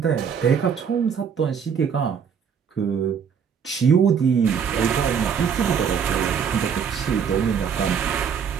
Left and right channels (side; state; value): left; quieter; 7.0 dB